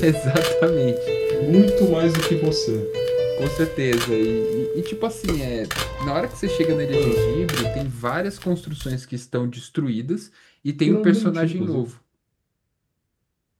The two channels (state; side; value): identical; both; correlation 1.00